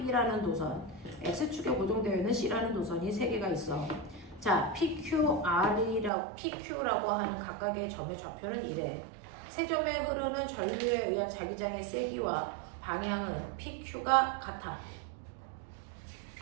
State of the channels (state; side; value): drops out; left; at 6.1 s